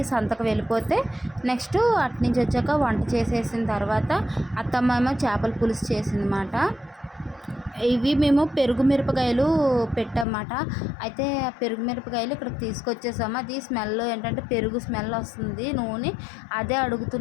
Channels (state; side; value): drops out; right; at 10.2 s